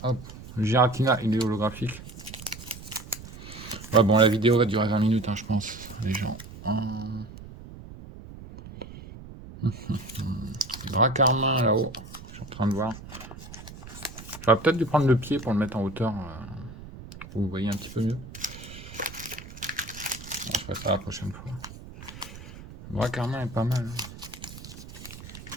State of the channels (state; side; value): noise; right; rumble, 15 dB below the sound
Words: Hop, le Giratina, il est holographique. Ouais, bon, la vidéo va durer 20 minutes, hein, je pense, les gens. Dracarmin là-haut, je suis en train de voir. J'aurais peut-être dû prendre le pied pour le mettre en hauteur, pour que vous voyez un petit peu mieux. Bon, je ferai ça la prochaine fois. Dracarmin est pas mal. Hein.